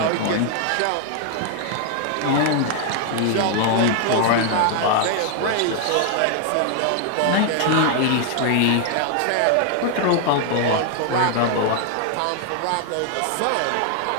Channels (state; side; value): different; both; correlation 0.00